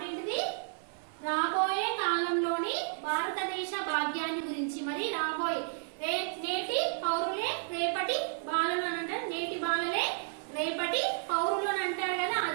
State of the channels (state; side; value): silent; left; 56 dB below the other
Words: ఏంటిది? రాబోయే కాలంలోని భారతదేశ భాగ్యాన్ని గురించి. మరి రాబోయే నేటి పౌరులే రేపటి బాలలు అని అంటారు. నేటి బాలలే రేపటి పౌరులు అని అంటారు కదా,